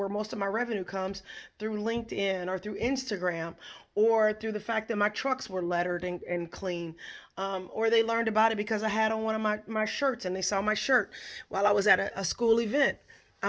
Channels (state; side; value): identical; both; correlation 1.00